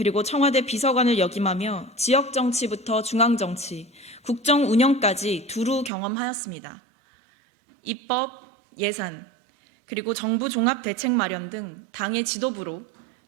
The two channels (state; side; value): drops out; left; at 5.9 s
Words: 청와대 비서관을 역임하며 지역 정치부터 중앙 정치, 국정 운영까지 두루 경험하였습니다. 입법, 예산, 그리고 정부 종합대책 마련 등 당의 지도부로